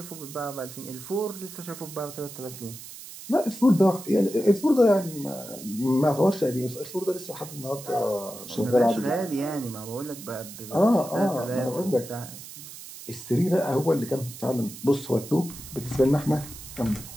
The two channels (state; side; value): noise; right; hiss, 14 dB below the sound